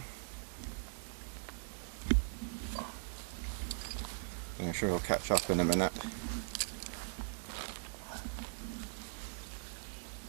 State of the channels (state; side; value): silent; left; 51 dB below the other